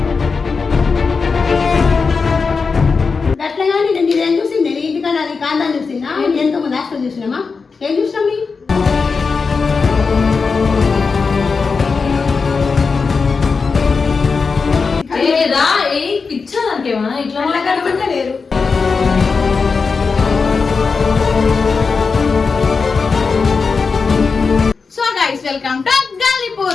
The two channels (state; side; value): quieter; right; 4.9 dB